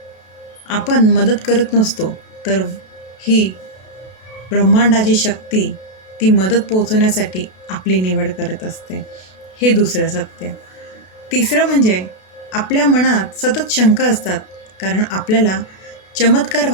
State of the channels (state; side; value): late; right; 32 ms